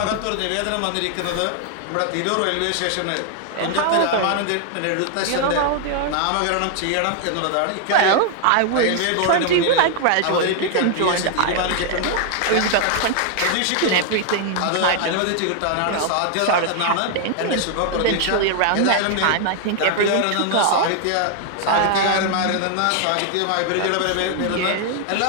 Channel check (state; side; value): different; both; correlation 0.00